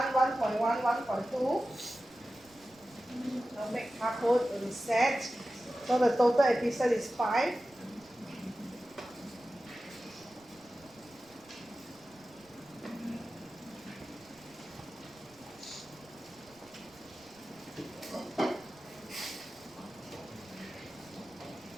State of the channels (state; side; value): noise; right; rumble, 27 dB below the sound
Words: 1.1, 1.2. So make hardcode reset. So the total episode is 5.